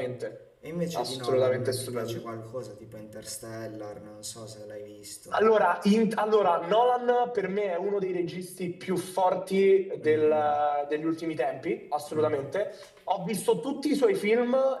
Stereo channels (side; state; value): both; identical; correlation 1.00